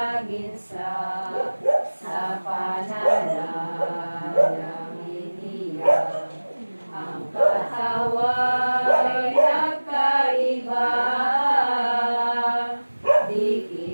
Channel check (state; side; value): inverted; both; correlation -1.00